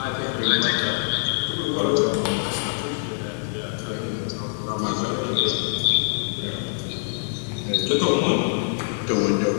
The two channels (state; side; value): silent; right; digital silence